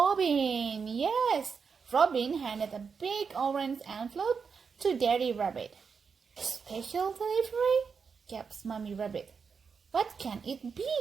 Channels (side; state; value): left; quieter; 5.7 dB